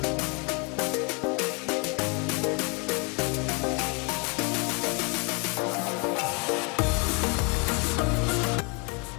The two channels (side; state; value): right; quieter; 33.1 dB